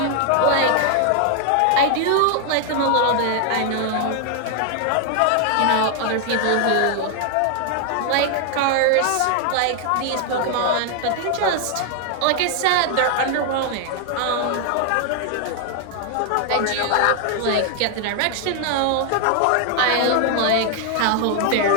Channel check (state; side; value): different; both; correlation 0.00